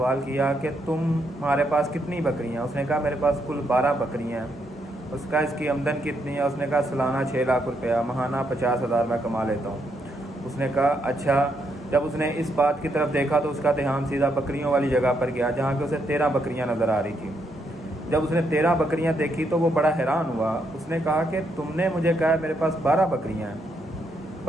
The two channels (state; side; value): normal; both; correlation 0.77